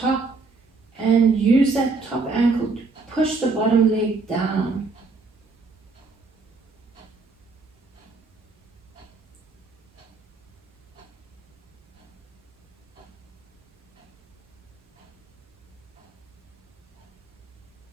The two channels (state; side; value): quieter; left; 4.0 dB